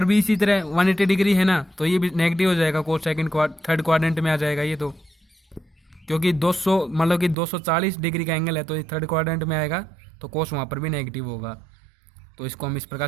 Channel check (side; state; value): left; drops out; at 7.4 s